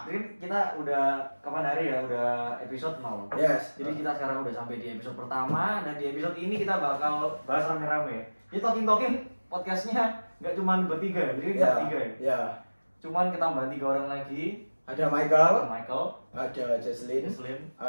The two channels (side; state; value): both; inverted; correlation -1.00